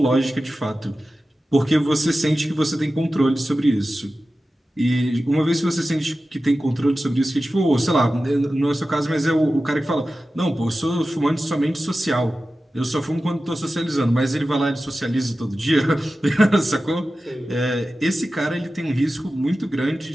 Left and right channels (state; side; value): normal; both; correlation 0.94